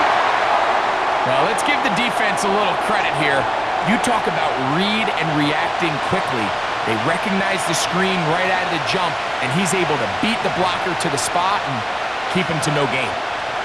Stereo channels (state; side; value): identical; both; correlation 1.00